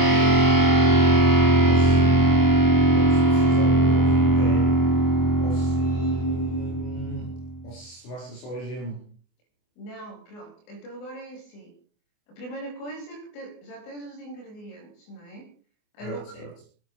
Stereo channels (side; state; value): right; late; 24 ms